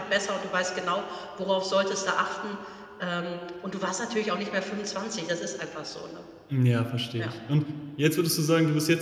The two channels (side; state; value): both; identical; correlation 1.00